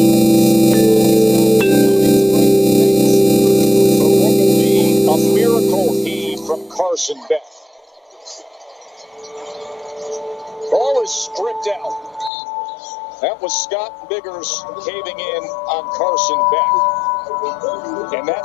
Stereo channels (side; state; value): right; drops out; at 12.3 s